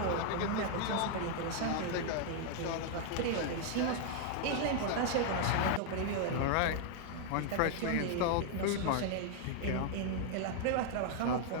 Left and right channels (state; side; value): different; both; correlation 0.00